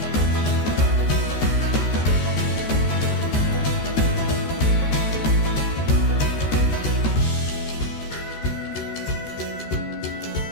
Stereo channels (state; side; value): late; right; 13 ms